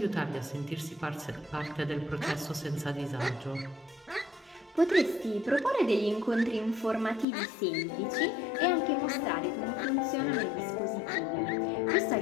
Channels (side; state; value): right; drops out; at 7.2 s